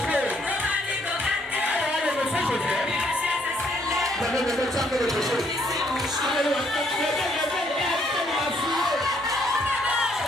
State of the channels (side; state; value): both; normal; correlation 0.68